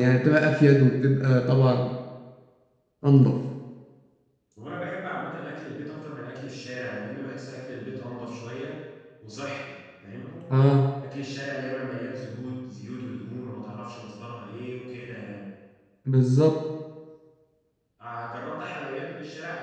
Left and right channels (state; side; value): identical; both; correlation 1.00